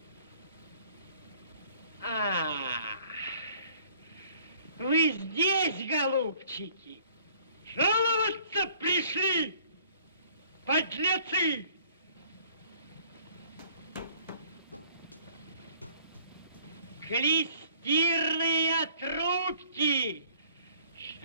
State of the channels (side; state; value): both; inverted; correlation -0.57